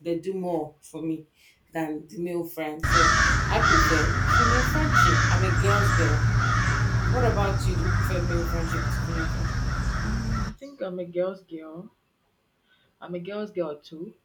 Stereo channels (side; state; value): both; identical; correlation 1.00